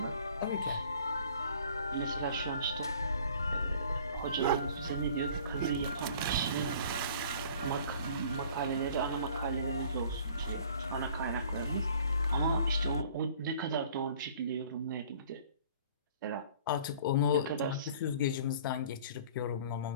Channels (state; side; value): inverted; both; correlation -0.50